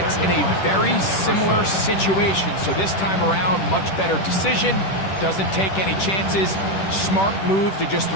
in a very similar situation. So this time around, much better decision. Doesn't take any chances. Smart move to just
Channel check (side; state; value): right; late; 10 ms